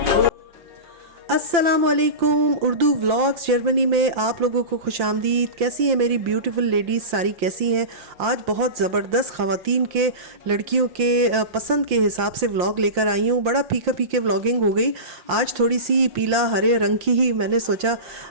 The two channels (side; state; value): left; late; 5.7 ms